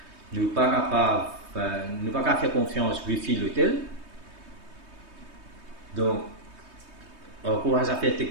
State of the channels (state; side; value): late; left; 3.2 ms